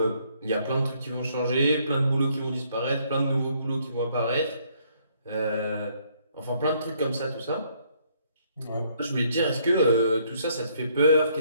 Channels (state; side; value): inverted; both; correlation -0.67